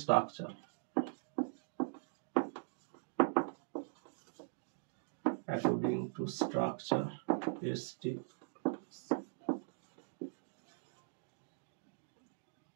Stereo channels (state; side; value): silent; left; digital silence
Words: structure, according to structure,